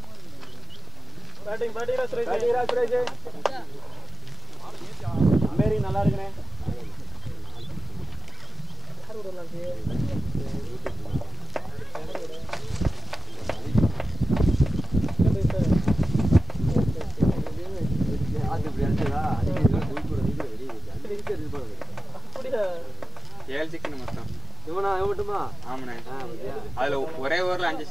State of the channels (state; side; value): normal; both; correlation 0.92